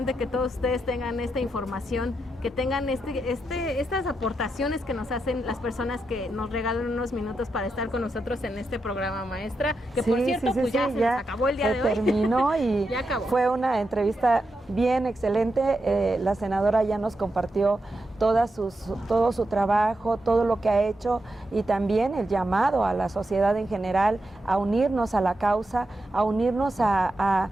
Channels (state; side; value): normal; both; correlation 0.86